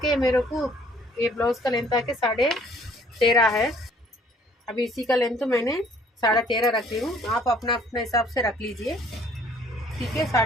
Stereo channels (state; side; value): normal; both; correlation 0.58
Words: मेरे को, ये ब्लाउज़ का लेंथ आके 13.5 है। अभी इसी का लेंथ तो मैंने 13.5 रख रही हूँ। आप अपना अपने हिसाब से रख लीजिए, ठीक है।